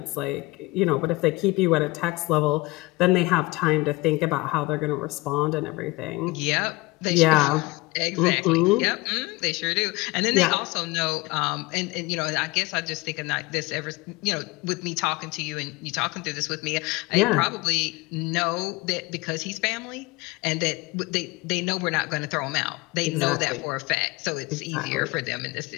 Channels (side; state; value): right; quieter; 22.3 dB